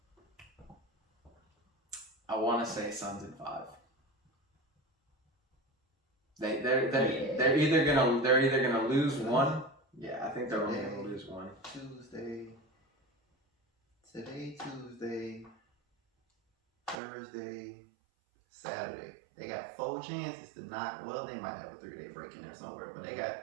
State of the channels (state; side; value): drops out; left; at 17.0 s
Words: I want to say Suns in 5. They're either gonna lose one. Yeah, I think they're only gonna lose one. Tuesday, Thursday, Saturday. They got 4 chances to knock. Well, they might have a 3-day break in there somewhere, but they